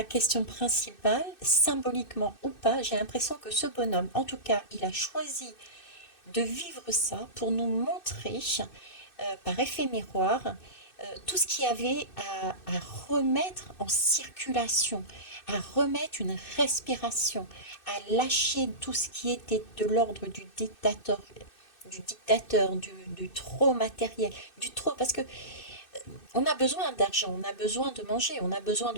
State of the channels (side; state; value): right; late; 2.6 ms